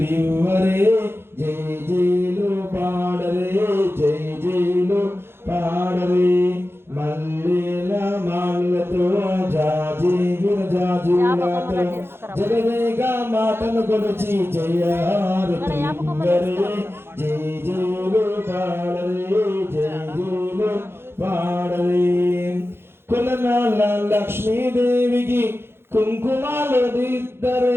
జై జైలు పాడరే జై జైలు పాడరే మల్లెల మాలతో జాజి విరజాజులతో జగదేగా మాటను కొలిచి జయారతి లివ్వరే జై జైలు పాడరే జై జైలు పాడరే కులనాల లక్ష్మీదేవికి కుంకుమాలు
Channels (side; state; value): left; late; 0.11 ms